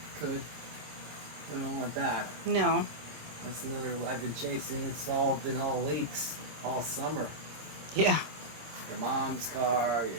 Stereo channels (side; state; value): left; late; 26 ms